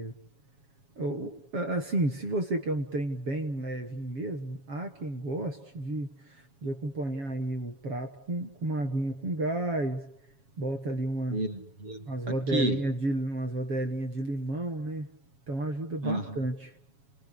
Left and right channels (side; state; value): left; late; 7.3 ms